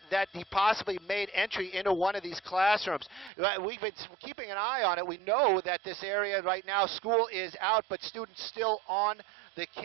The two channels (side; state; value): left; drops out; at 3.3 s